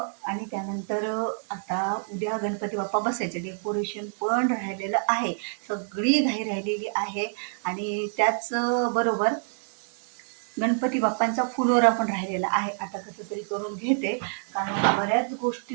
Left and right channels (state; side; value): silent; left; digital silence